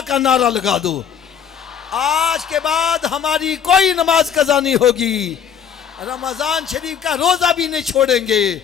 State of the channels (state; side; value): quieter; right; 8.1 dB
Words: का नारा लगा दो। आज के बाद हमारी कोई नमाज कज़ा नहीं होगी, रमजान शरीफ का रोजा भी नहीं छोड़ेंगे,